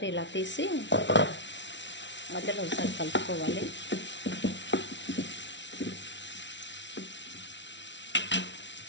ఇలా తీసి మధ్యలో ఒకసారి కలుపుకోవాలి.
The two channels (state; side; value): late; right; 0.52 ms